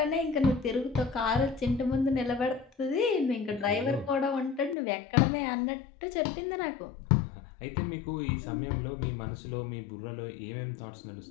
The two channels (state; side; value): drops out; right; at 4.8 s